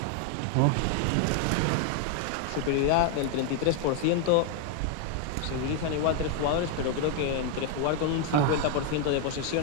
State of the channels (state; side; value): different; both; correlation 0.00